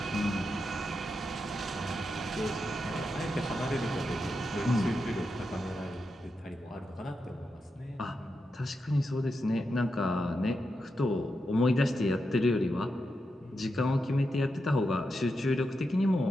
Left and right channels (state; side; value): normal; both; correlation 0.87